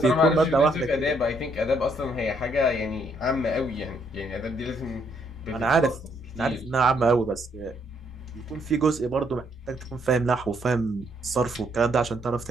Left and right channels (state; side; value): normal; both; correlation 0.71